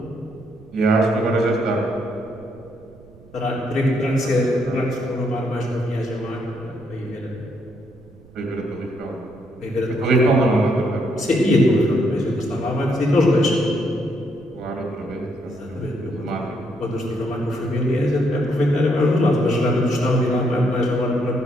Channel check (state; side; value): noise; right; rumble, 24 dB below the sound